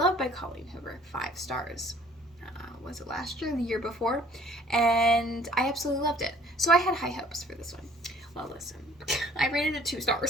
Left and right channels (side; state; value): both; normal; correlation 0.56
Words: by Colleen Hoover 5 stars. Was it last year or the year before? And I absolutely loved it. So I had high hopes for this one. Well, listen, I rated it 2